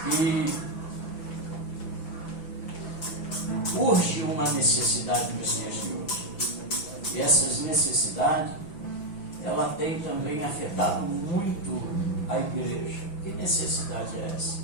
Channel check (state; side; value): late; right; 6.0 ms